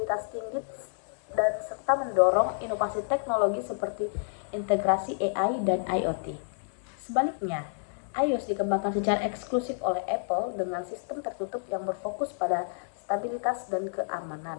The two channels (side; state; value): right; silent; digital silence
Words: tinggi dan serta mendorong inovasi teknologi seperti integrasi AI dan IoT. Sebaliknya, iOS dikembangkan secara eksklusif oleh Apple dengan sistem tertutup yang berfokus pada stabilitas dan keamanan.